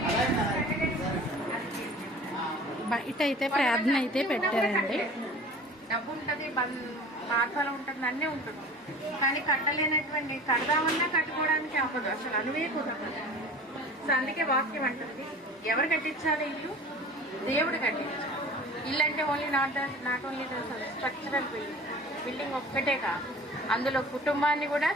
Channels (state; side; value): normal; both; correlation 0.41